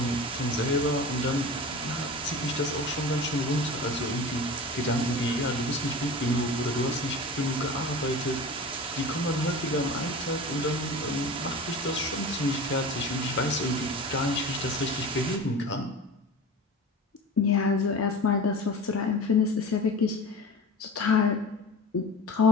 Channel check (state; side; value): normal; both; correlation 0.34